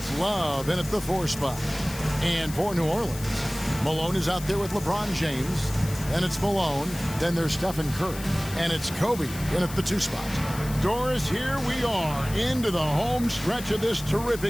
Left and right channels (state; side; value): noise; left; hiss, 13 dB below the sound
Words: Love in at the 4 spot. And for New Orleans, Malone is out there with LeBron James. And it's Malone. Then there's Stephen Curry. And it's Kobe in at the 2 spot. Doris, here we are into the home stretch of this